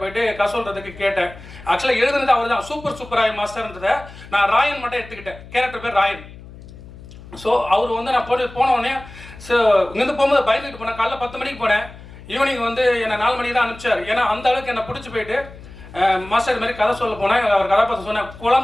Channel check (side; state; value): left; noise; hum, 17 dB below the sound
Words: போயிட்டு சொல்கிறதுக்கு கேட்டேன். ஆக்சுவலாக எழுதுனது அவர் தான் சூப்பராய் மாஸ்டர்ன்றதை நான் ராயன் மட்டும் எடுத்துக்கிட்டேன். கேரக்டர் பேர் ராயன். ஸோ அவர் வந்து நான் போனோடனே இங்கேருந்து போகும்போது பயந்துட்டு போனேன். காலைல 10 மணிக்கு போனேன், ஈவினிங் வந்து என்னை 4 மணிக்கு தான் அனுப்பிச்சார். ஏன்னா அந்த அளவுக்கு என்னை பிடிச்சி போயிட்டு மாஸ்டர் மாதிரி கதை சொல்ல போனேன். அவர் கதாபாத்திரம் சொன்னேன்,